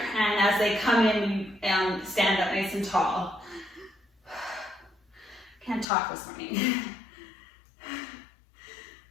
as they come in, you stand up nice and tall. Can't talk this morning.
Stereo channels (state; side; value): drops out; right; at 5.9 s